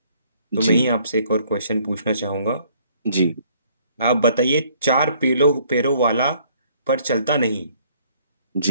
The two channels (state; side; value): inverted; both; correlation -0.62